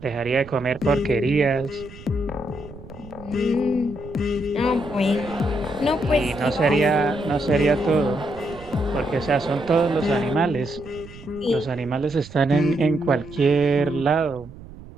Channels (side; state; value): right; noise; rumble, 17 dB below the sound